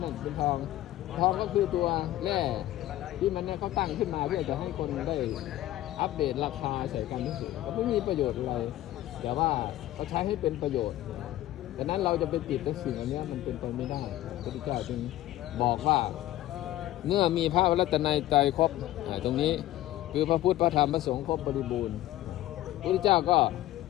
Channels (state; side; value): quieter; right; 14.8 dB